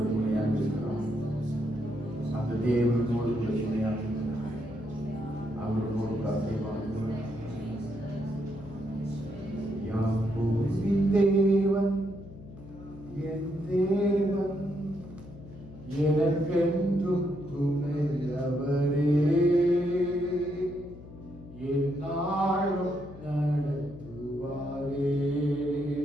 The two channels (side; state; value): left; noise; hum, 16 dB below the sound